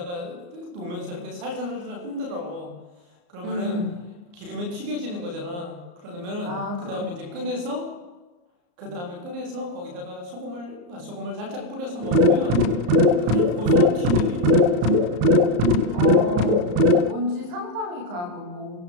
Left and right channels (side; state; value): left; late; 34 ms